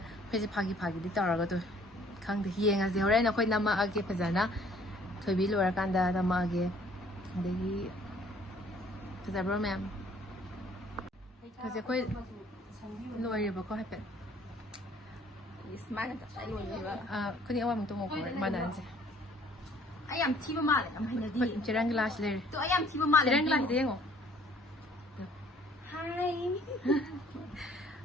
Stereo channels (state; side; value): normal; both; correlation 0.58